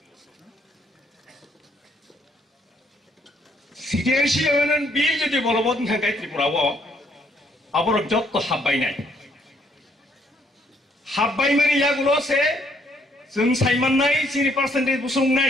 Citizenship Amendment Bill जुदि बलबत ओंखांखाय त्रिपुराव आबरक जत्तो हाबबायनाय हाबबायमानि यागुलसे जों सायमाननाय Chini percentage बुसुंनाय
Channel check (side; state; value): both; normal; correlation 0.68